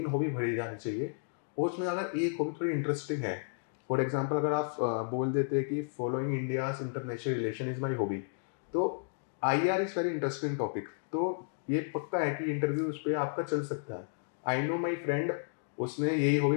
हॉबी भरी जानी चाहिए। और उसमें अगर एक हॉबी थोड़ी इंटरेस्टिंग है, फॉर एग्जाम्पल अगर आप बोल देते हैं कि following India's international relation is my hobby, तो IR is very interesting topic, तो ये पक्का है कि इंटरव्यू उस पर आपका चल सकता है। आई नो माई फ्रेंड, उसने यही हॉबी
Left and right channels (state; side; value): silent; right; digital silence